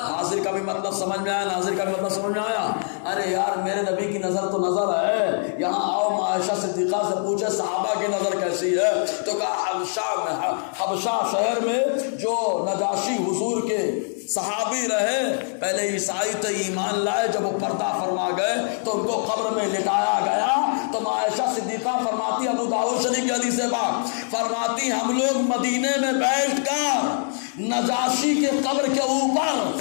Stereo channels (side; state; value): right; silent; digital silence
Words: حاضر کا بھی مطلب سمجھ میں آیا، ناظر کا بھی مطلب سمجھ میں آیا؟ ارے یار میرے نبی کی نظر تو نظر ہے، یہاں آؤ عائشہ صدیقہ سے پوچھے صحابہ کی نظر کیسی ہے، تو کہا حبشہ شہر میں جو نجاشی حضور کے صحابی رہے، پہلے عیسائی تو ایمان لائے، جب وہ پردہ فرما گئے تو ان کو قبر میں لٹایا گیا۔ تو عائشہ صدیقہ فرماتی، ابو داؤد شریف کی حدیث پاک فرماتی ہم لوگ مدینے میں بیٹھ کر نجاشی کے قبر کے اوپر